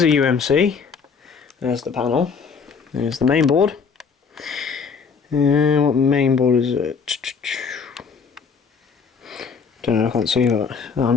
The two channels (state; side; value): quieter; right; 5.6 dB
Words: a UMC. There's the panel. There's the main board. What main board is it? Don't know, I can't see that. I'm